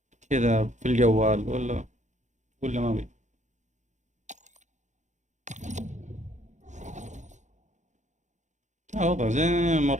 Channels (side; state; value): left; late; 0.35 ms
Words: كذا في الجوال ولا ما بي؟ وضع زين